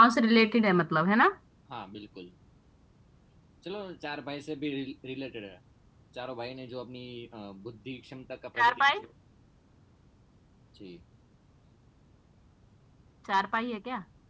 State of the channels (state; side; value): identical; both; correlation 1.00